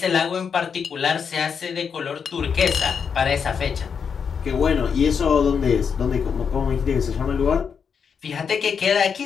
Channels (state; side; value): quieter; right; 6.6 dB